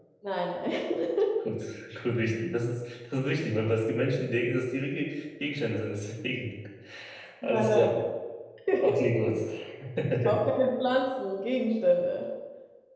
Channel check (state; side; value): identical; both; correlation 1.00